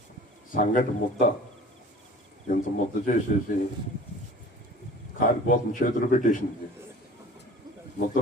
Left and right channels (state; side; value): normal; both; correlation 0.44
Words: సంగటి ముద్ద ఇంత ముద్ద చేసేసి కారిపోతుంది, చేతులు పెట్టేసింది.